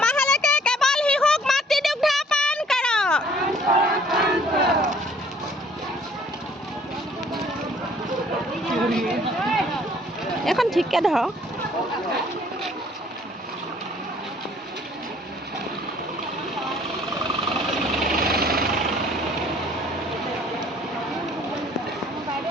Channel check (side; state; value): both; normal; correlation 0.58